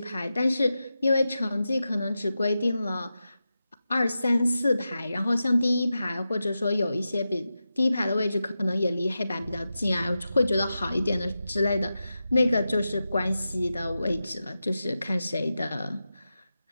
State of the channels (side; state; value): both; inverted; correlation -0.91